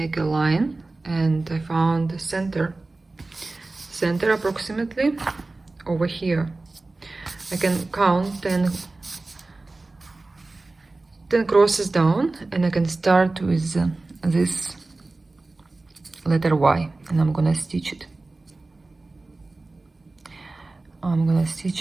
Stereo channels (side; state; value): left; quieter; 3.3 dB